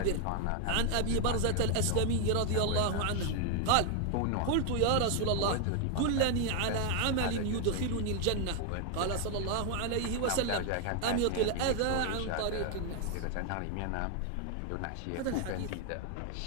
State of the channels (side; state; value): both; different; correlation 0.00